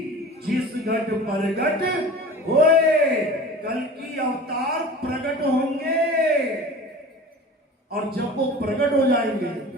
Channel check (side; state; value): both; normal; correlation 0.39